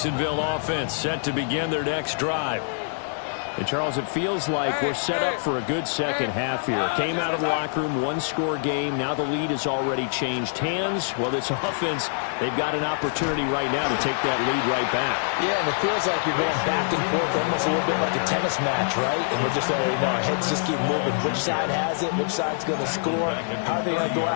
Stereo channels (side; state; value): right; silent; 59 dB below the other